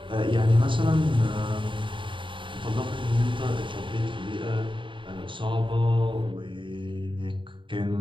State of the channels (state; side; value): late; left; 0.24 ms